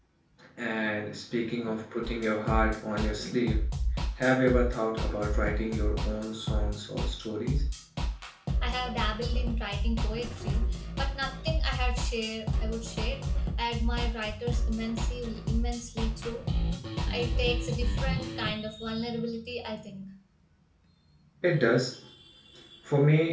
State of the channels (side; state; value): both; identical; correlation 1.00